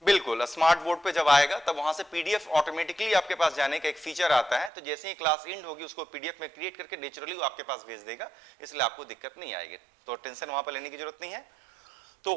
बिल्कुल, स्मार्ट बोर्ड पे जब आएगा तब वहां से पीडीएफ ऑटोमेटिकली आपके पास जाने का एक फीचर आता है, तो जैसे ही क्लास एंड होगी उसको पीडीएफ में क्रिएट करके नेचुरली वो आपके पास भेज देगा, इसलिए आपको दिक्कत नहीं आएगी, तो टेंशन वहां पर लेने की जरूरत नहीं है। तो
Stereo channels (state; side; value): drops out; left; at 4.7 s